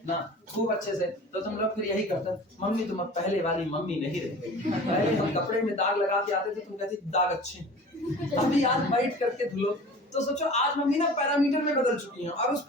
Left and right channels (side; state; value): both; normal; correlation 0.41